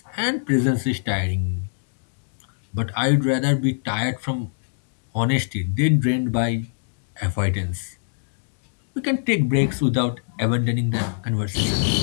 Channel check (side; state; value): right; silent; digital silence